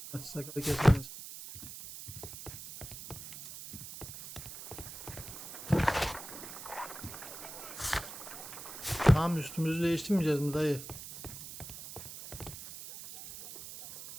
Sakalı kesemez. Tamam, üstümüzü değiştirmeyeceğiz mi dayı?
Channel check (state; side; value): noise; right; hiss, 11 dB below the sound